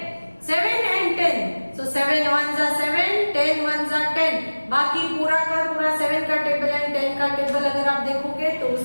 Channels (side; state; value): both; inverted; correlation -1.00